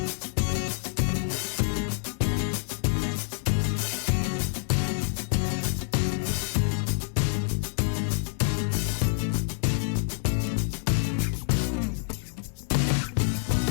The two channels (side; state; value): right; silent; 60 dB below the other